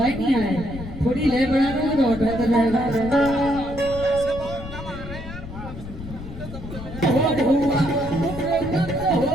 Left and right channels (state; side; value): noise; left; rumble, 11 dB below the sound